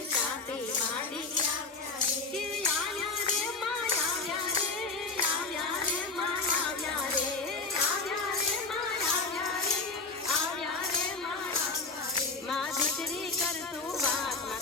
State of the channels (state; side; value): quieter; right; 3.8 dB